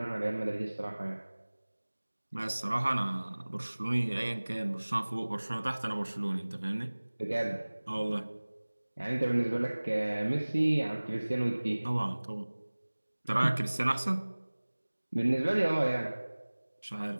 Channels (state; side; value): inverted; both; correlation -1.00